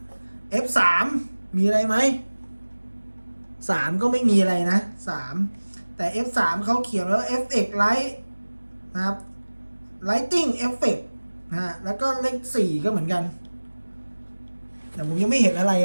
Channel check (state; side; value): inverted; both; correlation -1.00